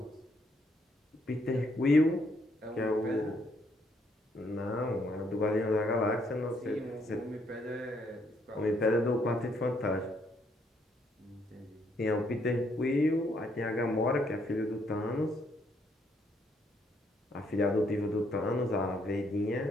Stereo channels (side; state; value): both; normal; correlation 0.71